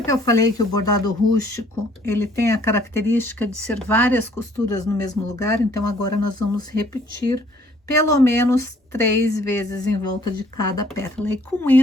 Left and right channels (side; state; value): both; normal; correlation 0.60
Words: que eu falei que o bordado rústico, ele tem a característica de ser várias costuras no mesmo lugar? Então, agora nós vamos repetir pelo menos 3 vezes em volta de cada pétala. E com